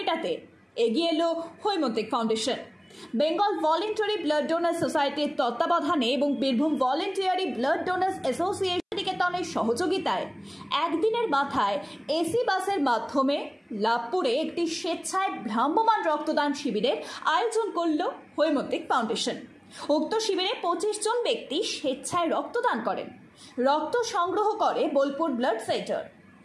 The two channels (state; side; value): identical; both; correlation 1.00